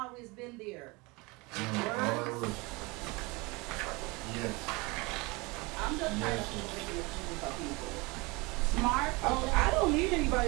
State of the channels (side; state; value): left; quieter; 25.5 dB